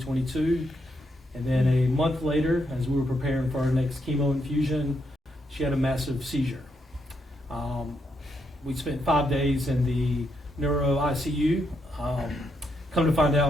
And then a month later, as we were preparing for our next chemo infusion, she had a massive seizure. We spent 5 days in the neuro ICU. Come to find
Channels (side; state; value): both; normal; correlation 0.79